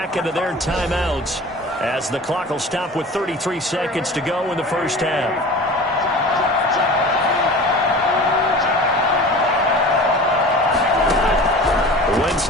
of their timeouts as the clock will stop with 33 seconds to go in the 1st half. Wentz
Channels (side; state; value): both; normal; correlation 0.38